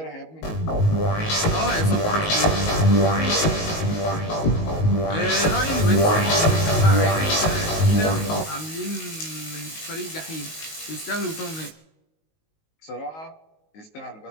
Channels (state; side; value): late; right; 19 ms